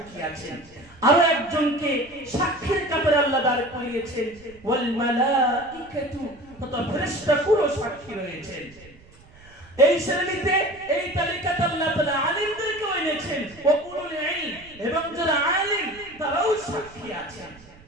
আছেন। আরো একজনকে সাক্ষীর কাতারে আল্লাহ দাঁড় করিয়েছেন, ওয়াল মালাইকাতু, তথা ফেরেশতাকুলও সাক্ষী রয়েছেন। এই শ্রেণীতে, এই তালিকাতে আল্লাহ তাআলা আলিমদেরকেও এনেছেন, ওয়া উলুল ইলম, এবং যারা আলিম তারাও সাক্ষী আছেন।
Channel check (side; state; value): right; noise; rumble, 24 dB below the sound